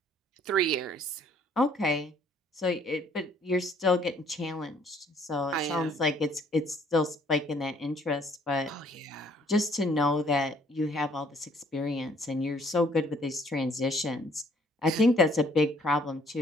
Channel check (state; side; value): normal; both; correlation 0.62